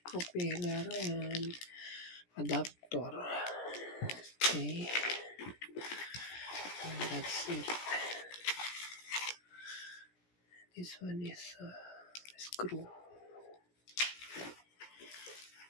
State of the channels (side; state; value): right; late; 17 ms